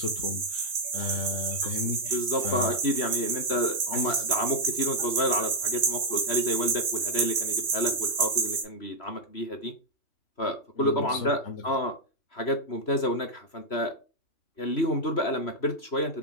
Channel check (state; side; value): late; right; 3.0 ms